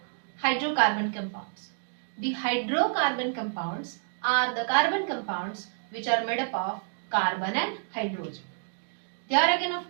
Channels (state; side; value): silent; left; digital silence